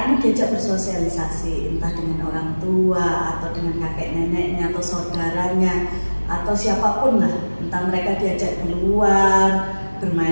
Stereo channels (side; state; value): both; inverted; correlation -1.00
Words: ini diajak bersosialisasi, entah dengan orang tua atau dengan kakek neneknya atau saudaranya atau siapapun lah, entah mereka diajak keluar,